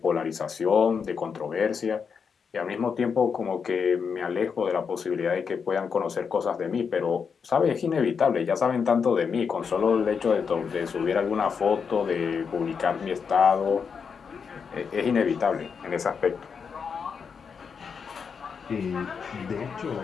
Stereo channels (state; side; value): quieter; right; 6.1 dB